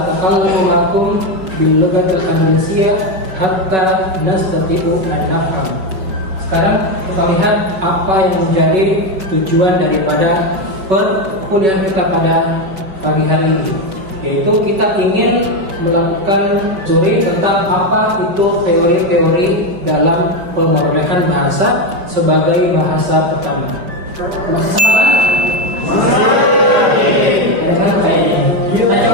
ma'akum bil lughatil indonesia hatta nastati'u an nafham. Sekarang kita lihat apa yang menjadi tujuan daripada perkuliahan kita pada pagi hari ini, yaitu kita ingin melakukan studi tentang apa itu teori-teori dalam pemrolehan bahasa sebagai bahasa pertama. Masih sama kan? Kita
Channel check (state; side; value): late; left; 5.3 ms